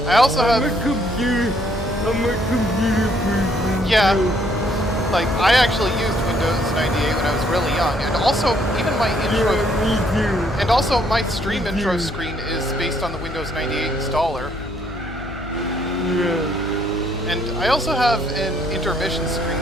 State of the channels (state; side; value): noise; left; hum, 12 dB below the sound